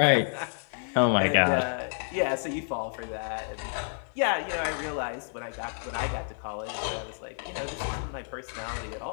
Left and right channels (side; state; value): right; silent; 58 dB below the other